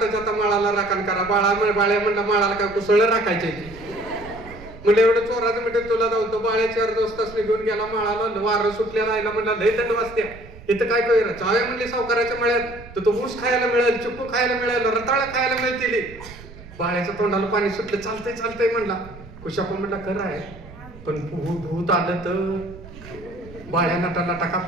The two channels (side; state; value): right; noise; rumble, 18 dB below the sound